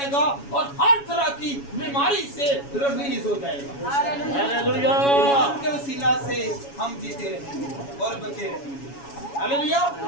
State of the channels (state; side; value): late; right; 7.2 ms